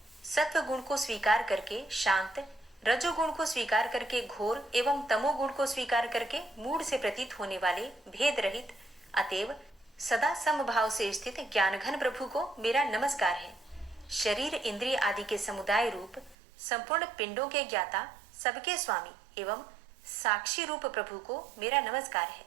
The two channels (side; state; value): left; drops out; at 16.4 s